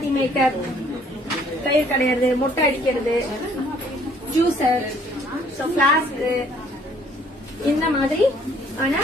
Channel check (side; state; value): both; normal; correlation 0.60